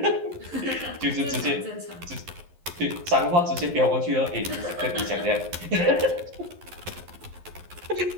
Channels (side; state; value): left; late; 11 ms